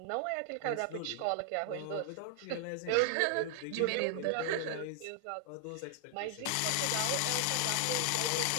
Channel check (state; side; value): different; both; correlation 0.00